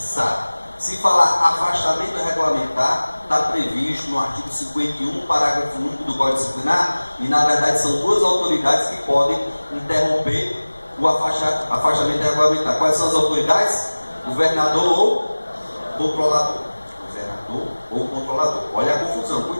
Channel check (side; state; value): both; inverted; correlation -1.00